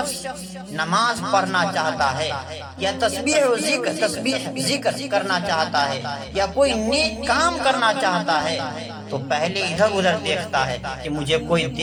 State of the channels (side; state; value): both; identical; correlation 1.00